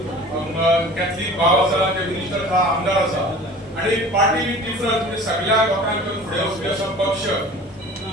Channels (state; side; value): normal; both; correlation 0.43